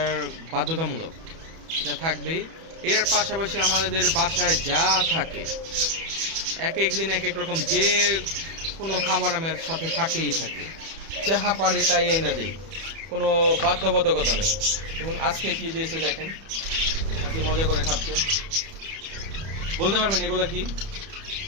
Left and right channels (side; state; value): left; late; 31 ms